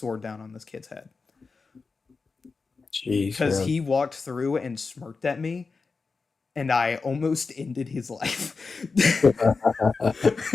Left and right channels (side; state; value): right; quieter; 4.4 dB